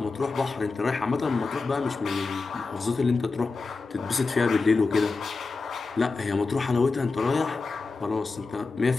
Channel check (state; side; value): quieter; right; 4.0 dB